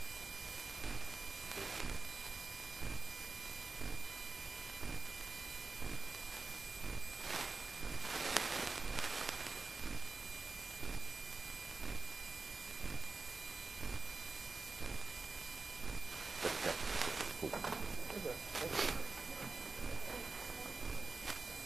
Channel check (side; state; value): left; quieter; 3.8 dB